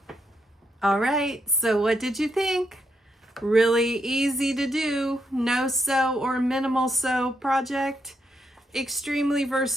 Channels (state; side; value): normal; both; correlation 0.80